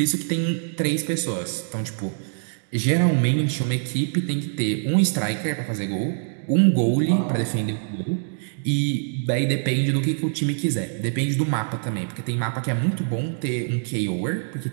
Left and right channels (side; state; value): left; silent; digital silence